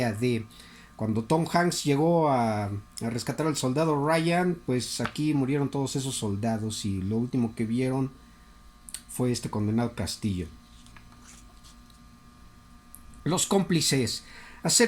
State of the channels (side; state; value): both; identical; correlation 1.00